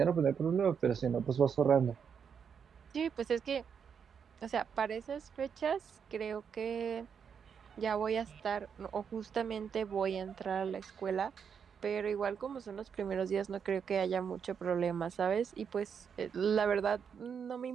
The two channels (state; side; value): quieter; left; 7.0 dB